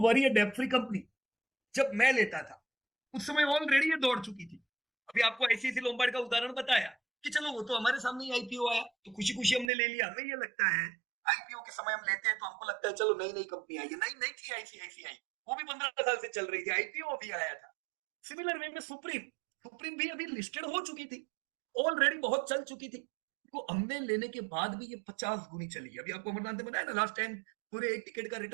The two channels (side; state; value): left; drops out; at 9.7 s